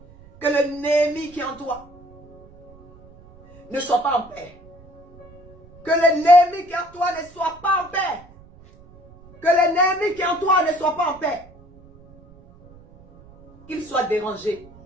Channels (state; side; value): noise; right; rumble, 24 dB below the sound